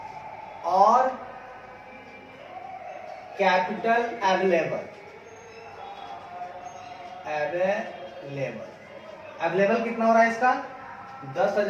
और कैपिटल अवेलेबल कितना हो रहा है इसका,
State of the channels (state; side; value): identical; both; correlation 1.00